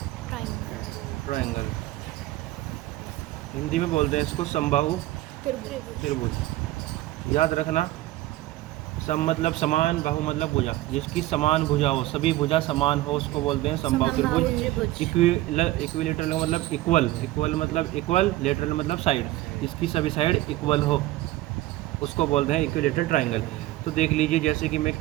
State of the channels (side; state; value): left; quieter; 16.8 dB